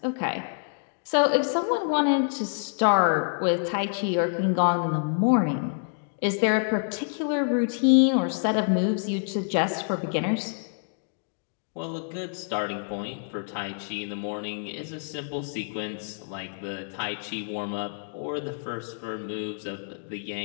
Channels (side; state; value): right; silent; digital silence